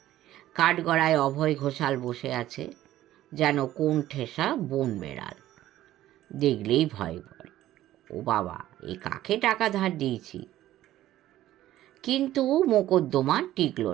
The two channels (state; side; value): quieter; left; 14.0 dB